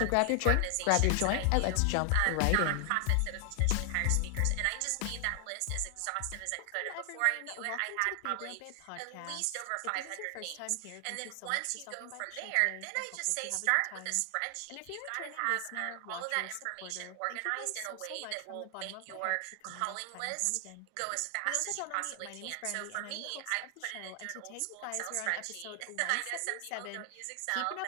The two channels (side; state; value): both; different; correlation 0.00